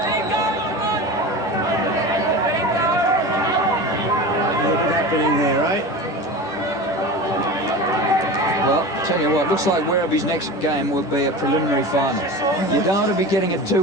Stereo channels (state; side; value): late; right; 11 ms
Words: What's happening there, eh? Well, tell you what, looks like Werribee's next game will be a preliminary final. You don't want to be getting a